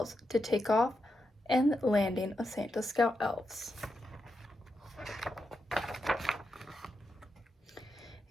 to take off and landing of Santa's scout elves.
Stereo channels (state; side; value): normal; both; correlation 0.86